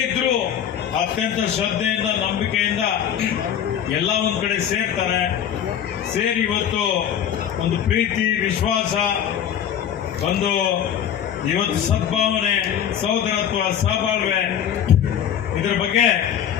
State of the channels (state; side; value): quieter; right; 9.4 dB